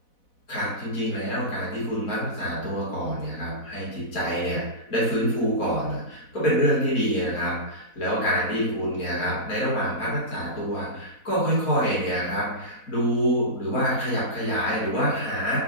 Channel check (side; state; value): right; late; 4.1 ms